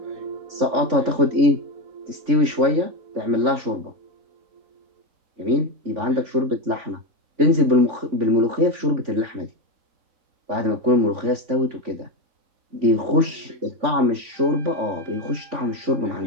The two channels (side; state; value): left; late; 3.5 ms